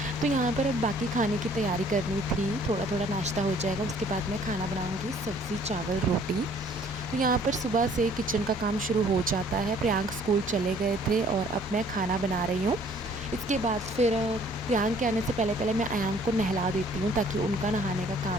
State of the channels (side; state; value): both; normal; correlation 0.58